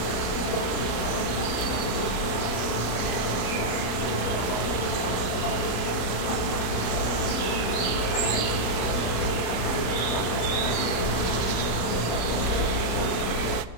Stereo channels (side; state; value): right; late; 33 ms